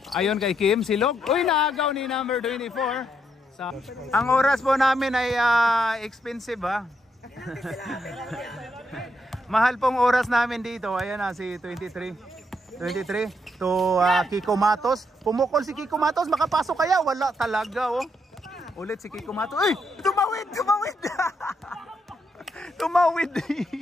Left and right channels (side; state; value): both; normal; correlation 0.78